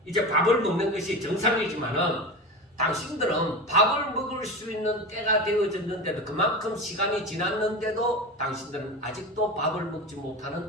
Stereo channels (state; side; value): normal; both; correlation 0.26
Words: 이제 밥을 먹는 것이 정상이지만은 당신들은 밥을 먹을 수 있는 때가 되어졌는데도 그만큼 시간이 지났는데도 당신들은 아직도 밥을 먹지